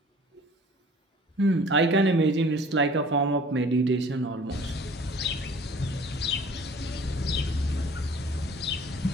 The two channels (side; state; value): both; normal; correlation 0.50